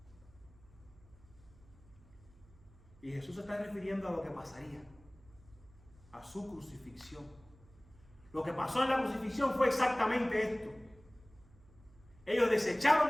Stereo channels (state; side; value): noise; right; hum, 25 dB below the sound